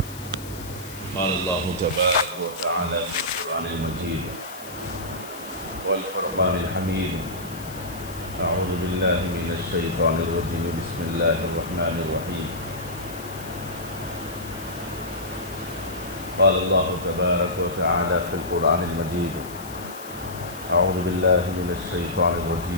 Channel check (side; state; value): left; noise; hiss, 16 dB below the sound